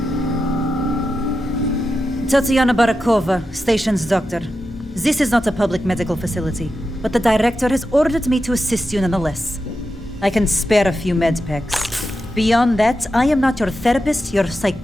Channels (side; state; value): both; normal; correlation 0.89